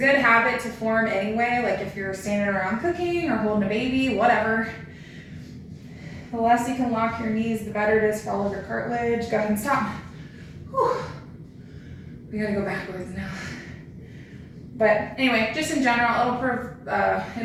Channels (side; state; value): both; identical; correlation 1.00